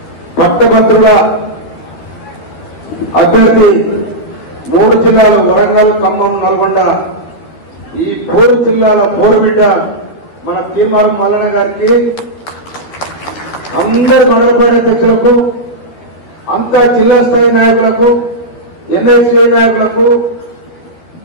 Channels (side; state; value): right; late; 12 ms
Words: పట్టభద్రుల అభ్యర్థి 3 జిల్లాలు వరంగల్, ఖమ్మం, నల్గొండ, ఈ 4 జిల్లాల పోరుబిడ్డ మన తీర్మానం మల్లన్న గారికి, అందరు మండలపాటి అధ్యక్షులకు, అంతా జిల్లా స్థాయి నాయకులకు, ఎన్ఐసీ నాయకులకు,